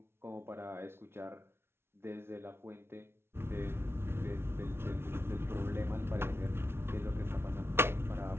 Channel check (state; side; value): late; left; 0.12 ms